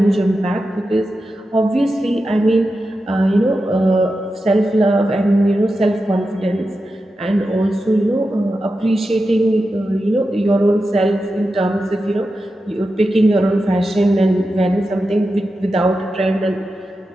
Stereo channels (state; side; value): normal; both; correlation 0.91